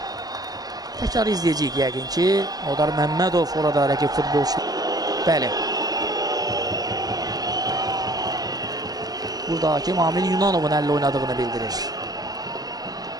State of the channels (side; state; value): left; late; 0.18 ms